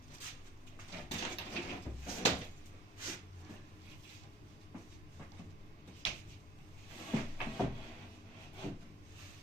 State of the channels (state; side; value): normal; both; correlation 0.51